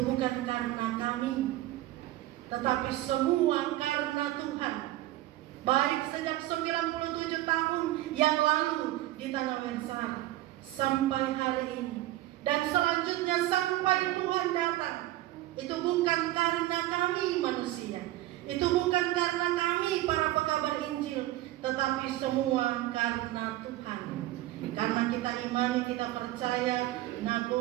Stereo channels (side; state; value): left; quieter; 15.9 dB